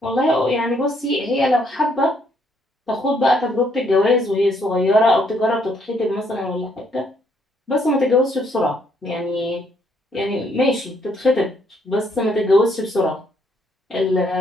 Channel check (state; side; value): normal; both; correlation 0.70